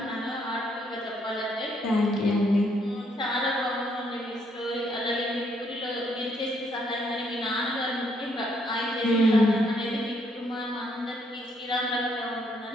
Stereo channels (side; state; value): both; normal; correlation 0.71